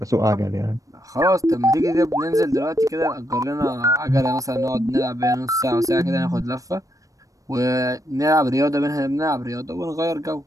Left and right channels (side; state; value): left; late; 0.16 ms